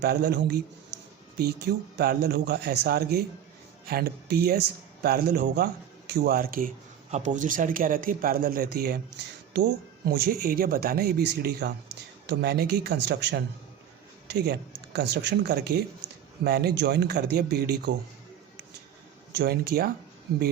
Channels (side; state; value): left; quieter; 9.7 dB